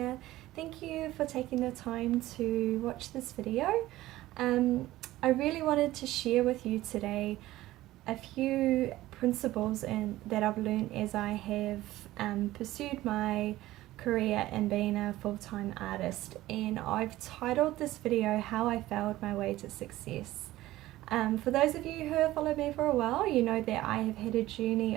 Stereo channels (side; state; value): left; quieter; 16.3 dB